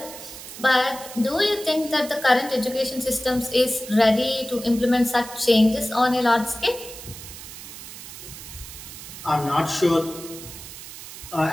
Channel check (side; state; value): right; noise; hiss, 13 dB below the sound